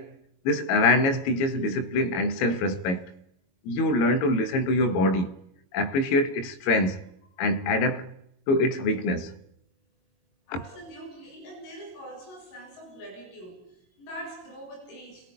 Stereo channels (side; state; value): right; late; 22 ms